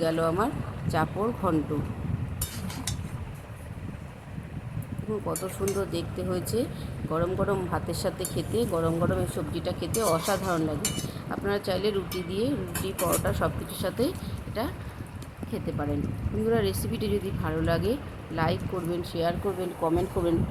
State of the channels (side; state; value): both; identical; correlation 1.00